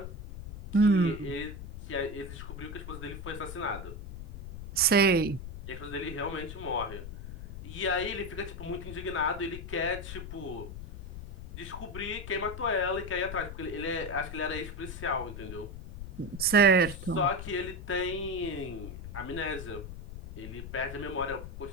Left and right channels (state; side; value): noise; left; rumble, 10 dB below the sound